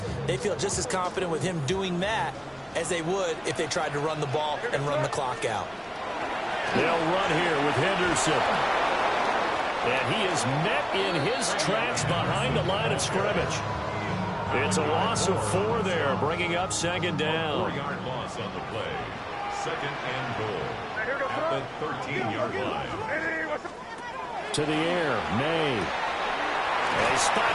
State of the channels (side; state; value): both; identical; correlation 1.00